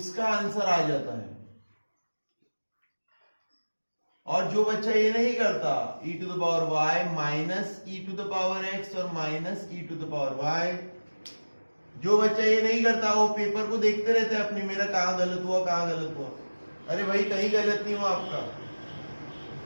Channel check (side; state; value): both; inverted; correlation -1.00